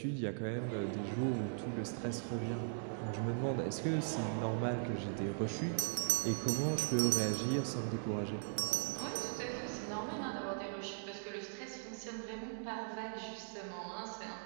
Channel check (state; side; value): silent; left; digital silence